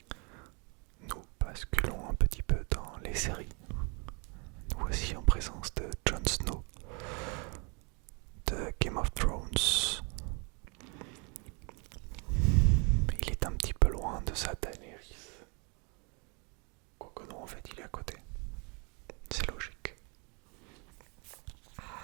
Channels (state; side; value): quieter; left; 33.1 dB